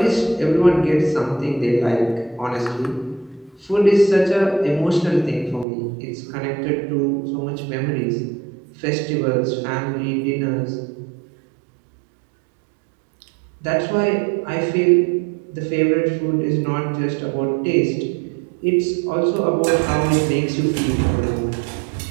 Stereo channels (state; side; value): drops out; left; at 5.7 s